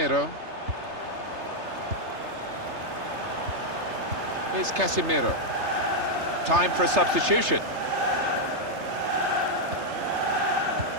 Here's Casemiro. Time for a substitution.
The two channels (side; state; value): left; late; 3.3 ms